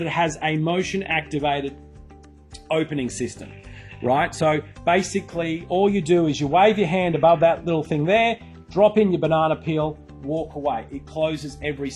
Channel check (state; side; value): identical; both; correlation 1.00